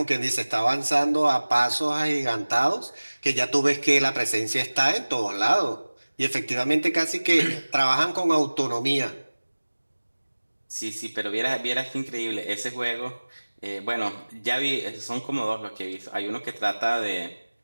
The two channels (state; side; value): inverted; both; correlation -1.00